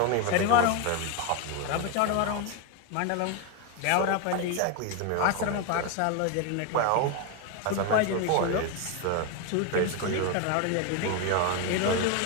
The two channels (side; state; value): both; different; correlation 0.02